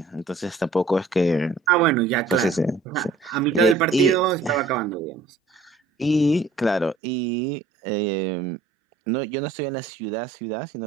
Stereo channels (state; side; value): drops out; left; at 7.0 s